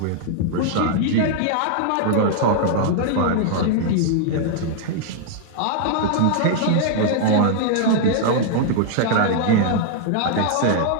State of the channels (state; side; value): different; both; correlation -0.01